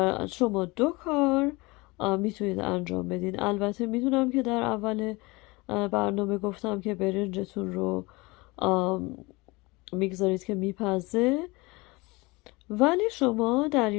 شما 2 کار میتونید انجام بدین. البته میدونم که در اول برنامه گفتم که برنجتون رو میگذارید که میپزه، ولی شما در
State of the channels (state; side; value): quieter; right; 24.2 dB